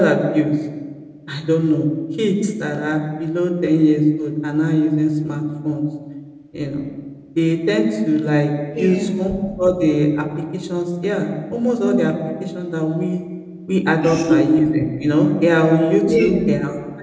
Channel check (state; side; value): identical; both; correlation 1.00